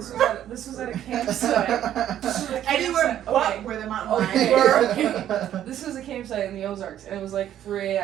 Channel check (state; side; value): quieter; left; 11.2 dB